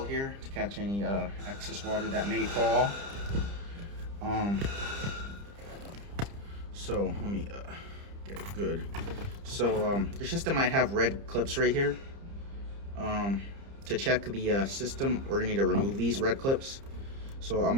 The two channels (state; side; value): late; left; 30 ms